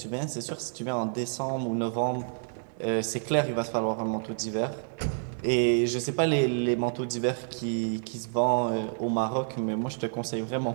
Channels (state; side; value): silent; left; digital silence